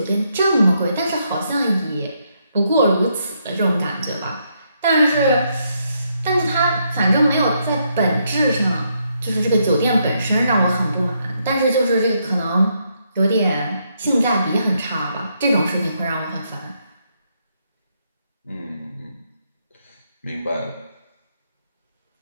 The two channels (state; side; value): inverted; both; correlation -0.77